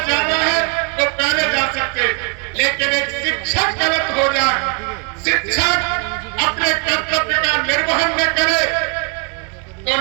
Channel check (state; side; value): quieter; left; 34.8 dB